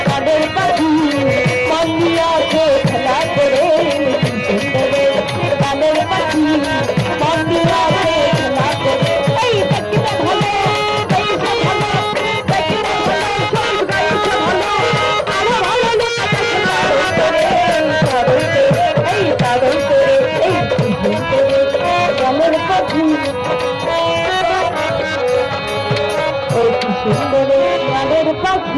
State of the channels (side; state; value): both; identical; correlation 1.00